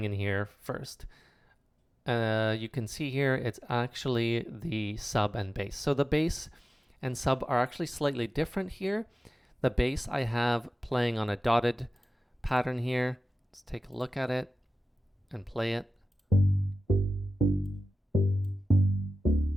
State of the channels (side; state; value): both; normal; correlation 0.94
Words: in here first? You can see here it's actually the sub and bass. So the bass and sub are actually slightly different here. The bass I have playing on a dotted pattern here. Let's take a look at it and play it.